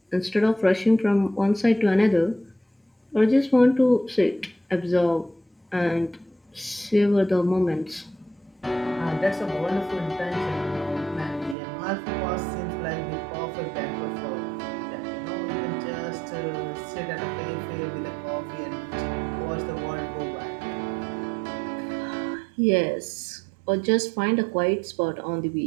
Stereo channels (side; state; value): left; drops out; at 11.6 s